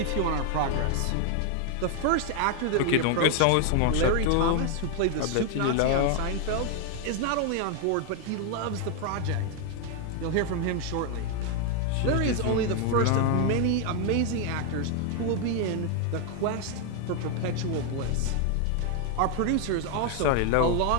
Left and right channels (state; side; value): different; both; correlation 0.01